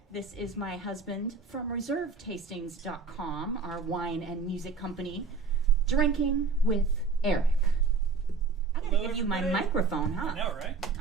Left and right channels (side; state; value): left; quieter; 4.5 dB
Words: This is my husband from ReserveTastings.com, our wine and music company, Drinking with Eric. I'm going to give you my microphone, huh? I know, right?